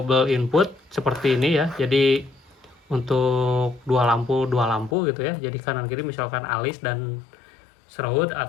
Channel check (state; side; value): drops out; right; at 5.0 s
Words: input seperti ini ya. Jadi untuk 2 lampu gitu ya. Jadi kanan kiri misalkan alis dan surround